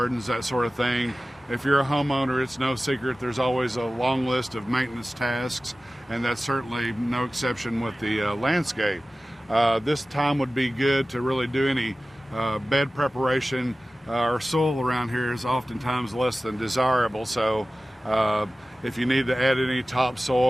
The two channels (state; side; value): normal; both; correlation 0.96